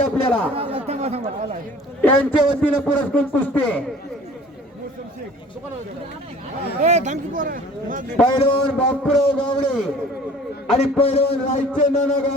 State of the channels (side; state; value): both; normal; correlation 0.48